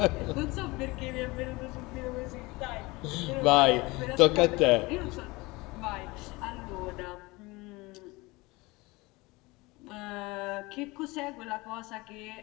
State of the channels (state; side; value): quieter; right; 23.0 dB